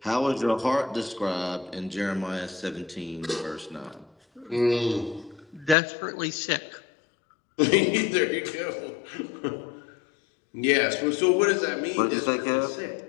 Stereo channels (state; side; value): drops out; right; at 5.8 s